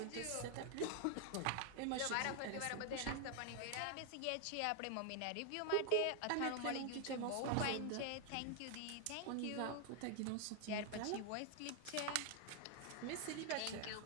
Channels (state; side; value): different; both; correlation 0.00